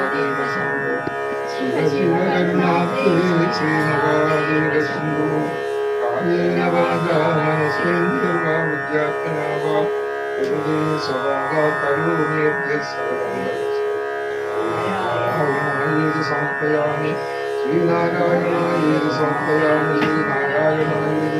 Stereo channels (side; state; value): both; identical; correlation 1.00